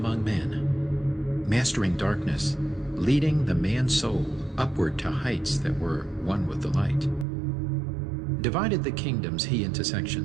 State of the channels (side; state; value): left; drops out; at 7.2 s